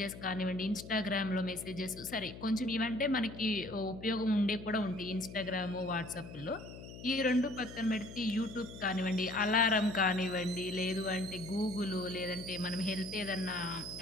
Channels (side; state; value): left; noise; hum, 13 dB below the sound